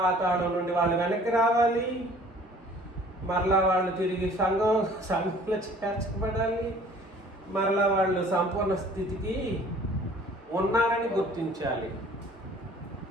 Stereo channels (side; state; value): both; normal; correlation 0.52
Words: నుండి వాళ్ళు వెనక్కి రావాలి, మరలా వాళ్ళు తిరిగి సంఘంలో చేర్చబడాలి, మరలా వాళ్ళు సంపూర్ణ స్థితికి ఉన్నారని గుర్తించాలి.